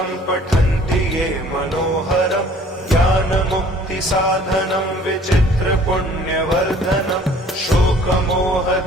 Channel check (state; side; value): normal; both; correlation 0.54